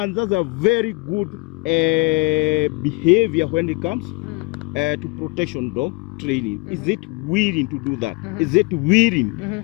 that's a very good behavior when it comes to protection dog training, is it willing to do that? Is it willing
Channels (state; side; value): quieter; right; 26.3 dB